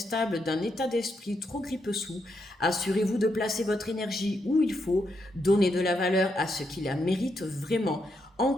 d'un état d'esprit trop grippe-sous. Assurez-vous de placer votre énergie où il faut, donnez de la valeur à ce qui la mérite vraiment. En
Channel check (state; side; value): normal; both; correlation 0.81